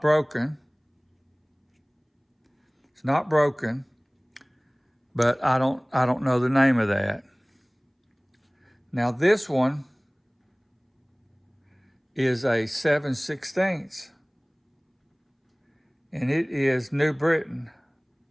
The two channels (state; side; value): identical; both; correlation 1.00